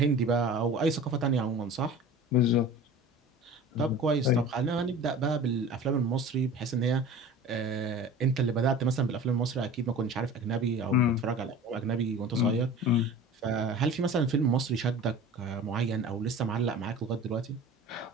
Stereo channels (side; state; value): both; normal; correlation 0.39